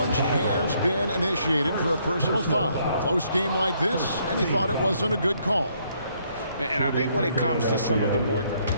has been initiated for a personal foul. Close game like this, and he thought it wasn't a good call. And I think when it comes to some of the more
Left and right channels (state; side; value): inverted; both; correlation -0.70